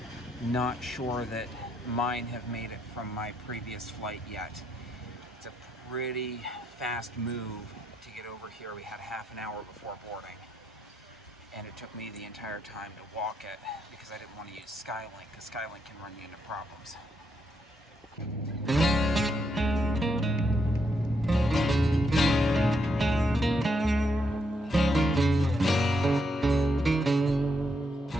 not sure that mine have made it from my previous flight yet. It's a pretty fast move to get over here. We had half an hour before boarding, and it took me the entire time to walk it because I didn't want to use Skylink, because Skylink can run you into problems.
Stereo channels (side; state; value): both; normal; correlation 0.78